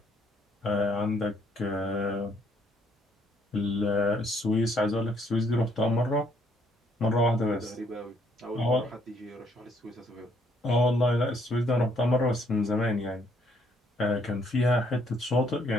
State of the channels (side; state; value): both; normal; correlation 0.67